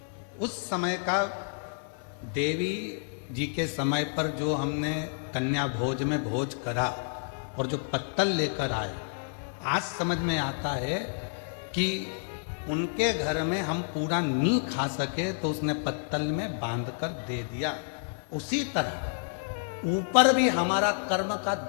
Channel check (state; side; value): silent; right; 58 dB below the other